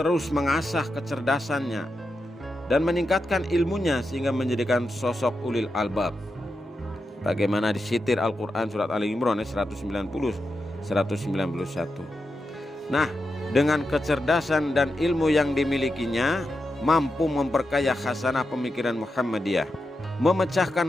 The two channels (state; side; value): normal; both; correlation 0.88